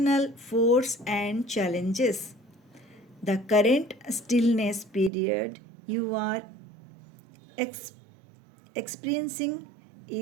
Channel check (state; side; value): drops out; left; at 5.1 s